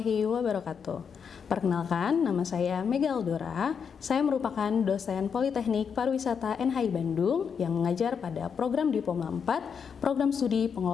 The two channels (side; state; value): right; quieter; 6.7 dB